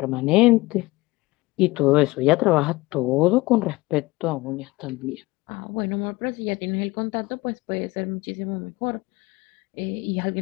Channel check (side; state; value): right; quieter; 20.9 dB